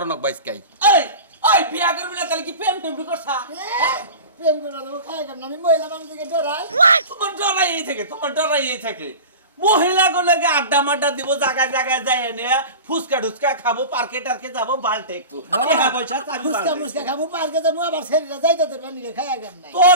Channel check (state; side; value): inverted; both; correlation -0.33